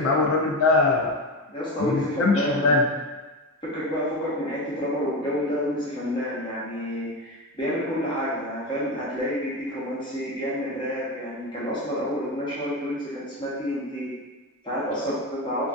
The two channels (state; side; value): normal; both; correlation 0.19